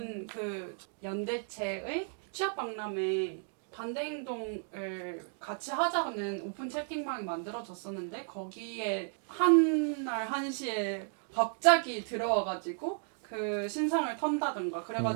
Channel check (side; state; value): left; silent; 55 dB below the other